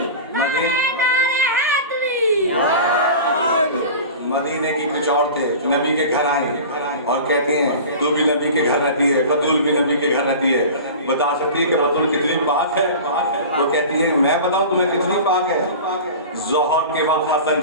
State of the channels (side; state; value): both; inverted; correlation -0.35